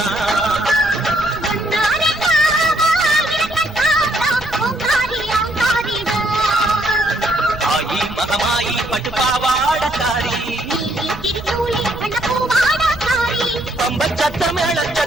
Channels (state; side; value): noise; right; rumble, 17 dB below the sound